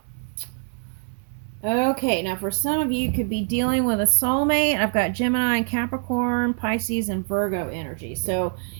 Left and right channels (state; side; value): silent; left; digital silence